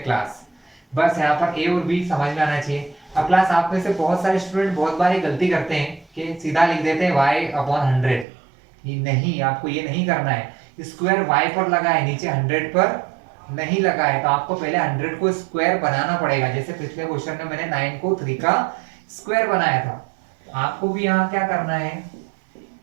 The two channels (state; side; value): drops out; left; at 8.2 s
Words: Class बस यहाँ पर a और b समझ में आना चाहिए। अब क्लास आप में से बहुत सारे स्टूडेंट बहुत बार ये गलती करते हैं कि सीधा लिख देते हैं y अपॉन 100। ये नहीं, आपको ये नहीं करना है, स्क्वायर y पर लगा है, नीचे 100 पर नहीं लगा है, तो आपको पहले 100 को स्क्वायर बनाना पड़ेगा। जैसे पिछले क्वेश्चन में मैंने 9 को 3 का स्क्वायर बनाया था, तो आपको भी यहाँ क्या करना है,